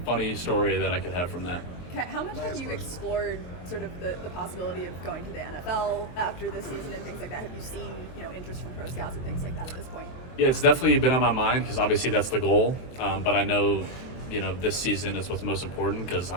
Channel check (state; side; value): late; right; 23 ms